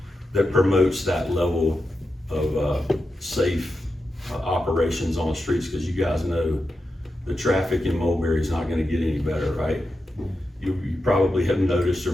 that promotes that level of safe operations on the streets, because you guys know the traffic in Mulberry is not going to get any better, right? You probably have noticed, or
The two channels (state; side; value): normal; both; correlation 0.89